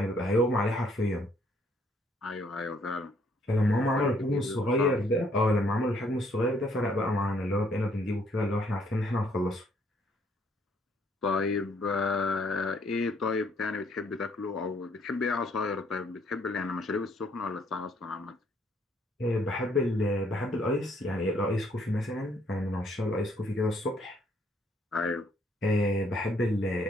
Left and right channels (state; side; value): normal; both; correlation 0.67